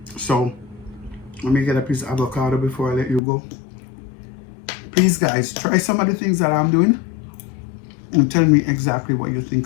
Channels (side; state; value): right; drops out; at 3.2 s